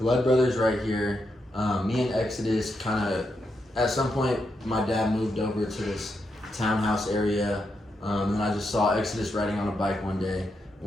brothers right here. Me and Exodus kind of, at some point, my dad moved over to this townhouse area, and I just saw Exodus riding on a bike one day,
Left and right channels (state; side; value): normal; both; correlation 0.83